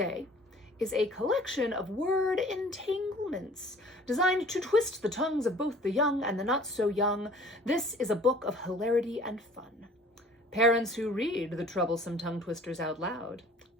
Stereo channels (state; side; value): normal; both; correlation 0.50